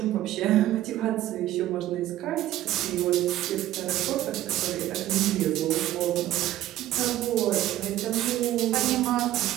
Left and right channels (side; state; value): left; quieter; 14.0 dB